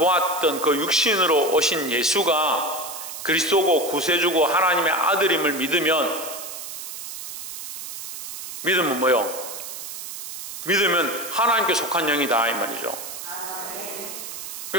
그 육신으로 오신 예수가 그리스도고 구세주고 하나님의 아들임을 믿으면 뭐요? 믿으면 하나님께 속한 영이다 이 말이죠.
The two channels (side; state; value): right; noise; hiss, 9 dB below the sound